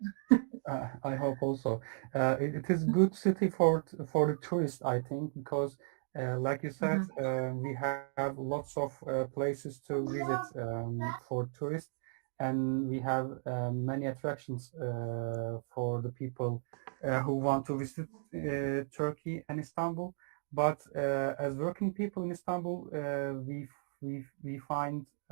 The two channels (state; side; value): silent; left; digital silence